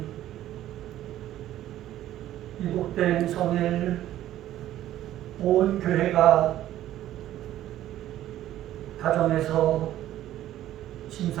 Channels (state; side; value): quieter; left; 13.2 dB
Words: 이복된 성일 온 교회가 가정에서